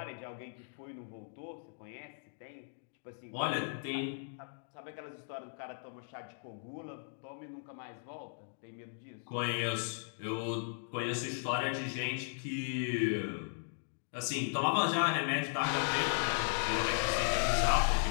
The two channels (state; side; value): silent; right; digital silence